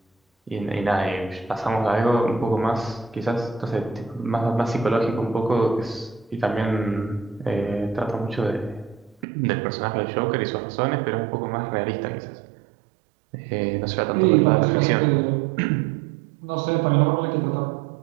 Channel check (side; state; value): left; drops out; at 9.2 s